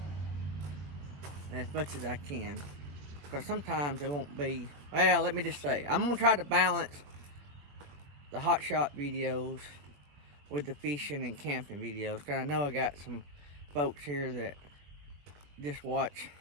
as much as I can, because sometimes it won't be, well, let me just say, I'm going to try to balance the Hotshot videos with the fishing and camping videos, because I know I got some folks here that just watch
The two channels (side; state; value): left; late; 21 ms